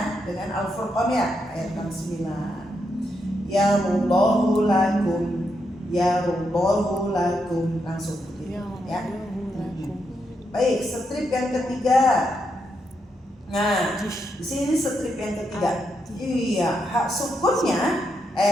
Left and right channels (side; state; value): both; normal; correlation 0.81